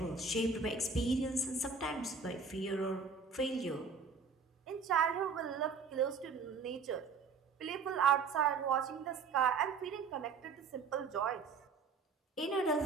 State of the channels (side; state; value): left; quieter; 5.1 dB